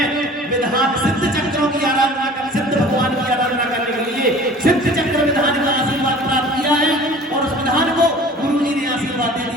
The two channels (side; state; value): both; normal; correlation 0.45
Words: में विधान चक्रों की आराधना कर, सिद्ध भगवान की आराधना करने के लिए सिद्ध चक्र विधान का आशीर्वाद प्राप्त किया है और उस विधान को गुरु जी ने आशीर्वाद दे